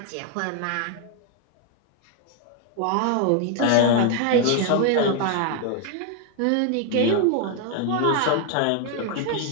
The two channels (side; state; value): both; different; correlation 0.01